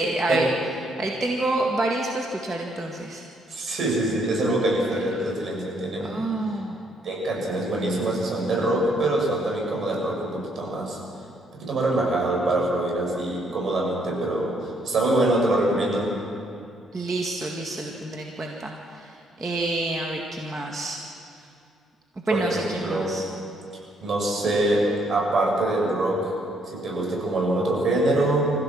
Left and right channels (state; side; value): normal; both; correlation 0.70